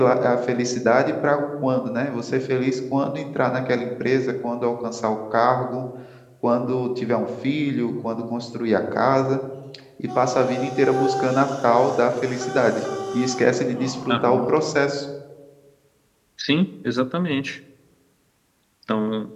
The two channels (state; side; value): identical; both; correlation 1.00